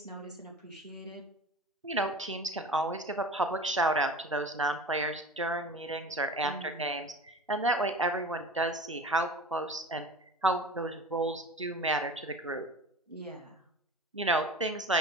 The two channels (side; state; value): both; normal; correlation 0.37